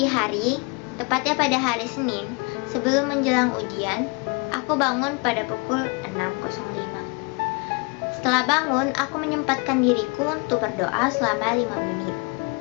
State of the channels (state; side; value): quieter; right; 31.5 dB